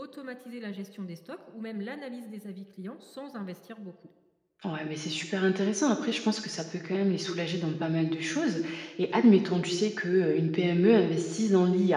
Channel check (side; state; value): both; identical; correlation 1.00